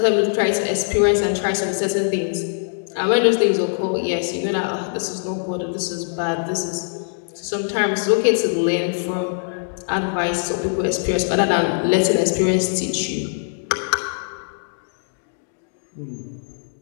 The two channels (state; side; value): silent; right; digital silence